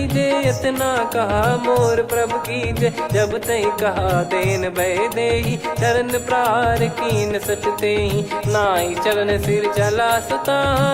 इतना कहा मोर प्रभु कीजे। जब तई कहा देन भय देहि, चरण प्रार कीन सटतेहि। नाई चरण सिर चला सता,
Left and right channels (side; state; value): both; identical; correlation 1.00